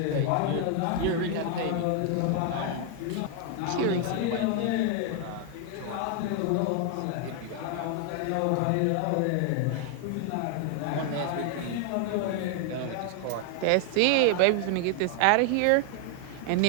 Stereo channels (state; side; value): different; both; correlation 0.00